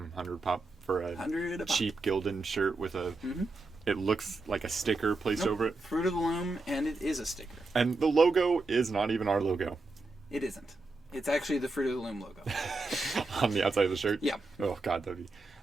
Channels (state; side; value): quieter; left; 3.3 dB